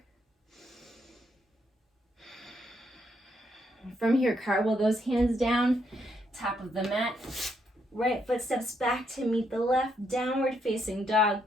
From here, cartwheel those hands down, top of the mat. Right foot steps back to meet the left, downward facing dog.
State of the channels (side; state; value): both; normal; correlation 0.76